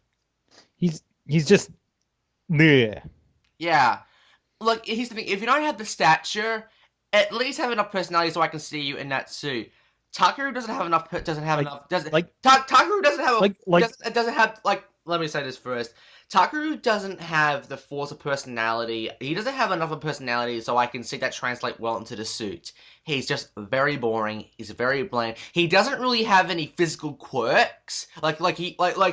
He's just. Yeah. Yeah. Look, here's the thing. If you don't have the stature, at least have enough personality so I can see you in that suit. Takeru doesn't have enough. Takeru doesn't have Let me say this first. Takeru doesn't have the force of personality. He doesn't have enough of personality so I can see that translate well into the suit. He's just very boring. He's very bland. He doesn't really have any physical quirks. He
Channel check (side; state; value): both; identical; correlation 1.00